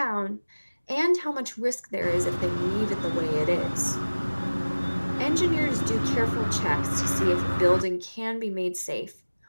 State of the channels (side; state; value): both; inverted; correlation -1.00